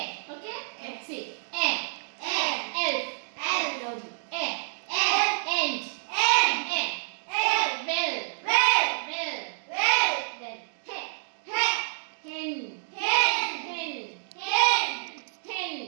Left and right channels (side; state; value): left; silent; digital silence